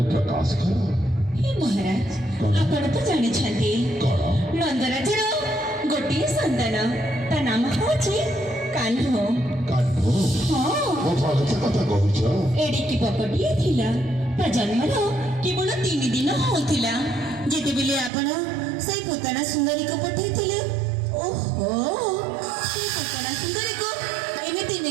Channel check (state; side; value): drops out; left; at 18.1 s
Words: प्रकाश कर। हे महाराज आपण तो जानि छथि नंदराजर गोटिए संतान ता नाम होछि कान्हो। कान्हो हां ओ भगत कथा कहूछ एडिकी पकटिए थिला ता जन्मर केवल 3 दिन होथिला जेते बेले आपण से पोताना सुंदरी को पठैथिले। ओहो से पोताना सुंदरी को एमिति